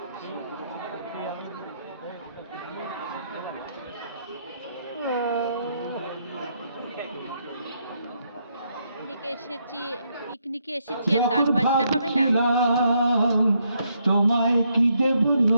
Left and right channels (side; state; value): both; inverted; correlation -0.76